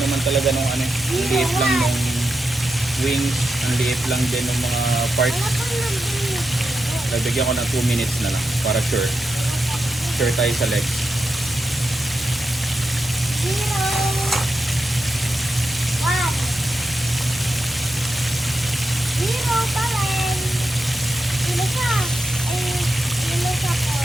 talaga nung liliit lang nung wings, ang liit lang din ng mga parts. Nabigyan ko ng 2 minutes na lang para sure tayo sa legs. 0, 1. 0 pa rin. Sino siya? Sino siya po?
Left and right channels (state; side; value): normal; both; correlation 0.88